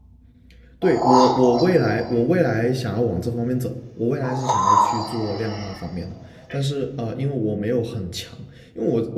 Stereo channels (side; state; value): both; identical; correlation 1.00